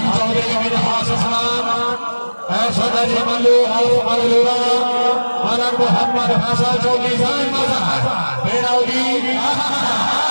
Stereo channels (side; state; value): both; inverted; correlation -1.00